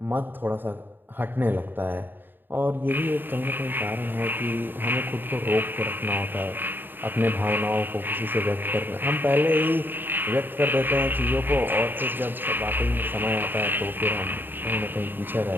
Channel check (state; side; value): late; left; 0.094 ms